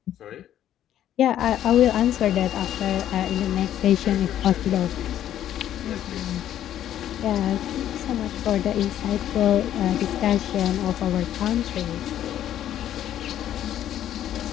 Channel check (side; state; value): right; quieter; 11.3 dB